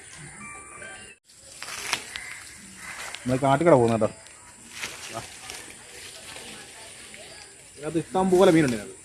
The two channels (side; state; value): both; identical; correlation 1.00